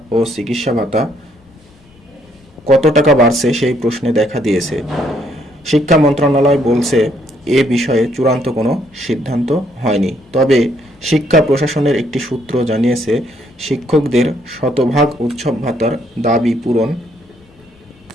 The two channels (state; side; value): normal; both; correlation 0.69